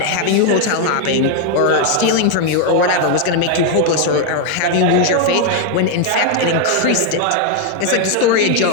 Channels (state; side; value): different; both; correlation 0.00